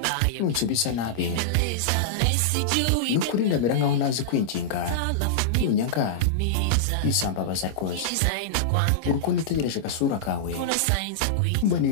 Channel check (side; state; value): right; late; 26 ms